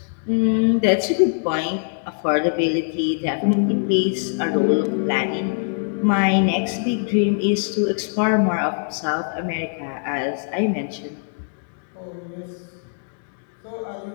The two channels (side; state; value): right; silent; digital silence